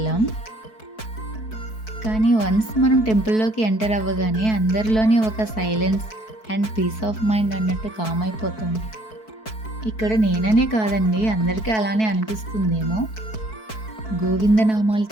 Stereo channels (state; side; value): late; right; 4.6 ms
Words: కానీ వన్స్ మనం టెంపుల్లోకి ఎంటర్ అవ్వగానే అందరిలోని ఒక silence and peace of mind అన్నట్టు కామ్ అయిపోతాం. ఇక్కడ నేననే కాదండి, అందరికీ అలానే అనిపిస్తుందేమో. గోవిందనామాలు